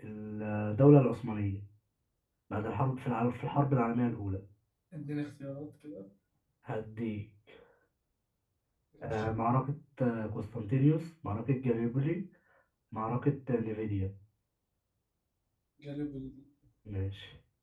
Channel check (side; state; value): both; identical; correlation 1.00